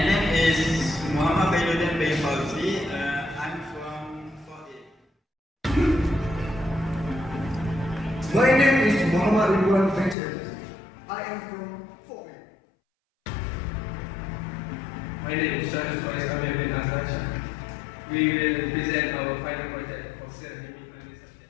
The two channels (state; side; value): drops out; right; at 10.2 s